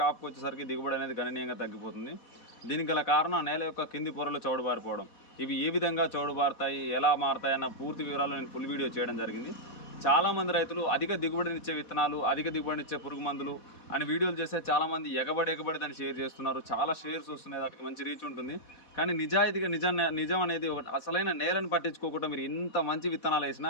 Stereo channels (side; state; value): right; late; 4.1 ms